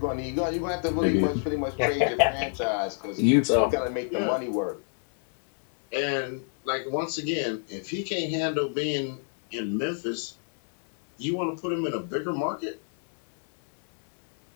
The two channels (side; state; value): right; silent; 59 dB below the other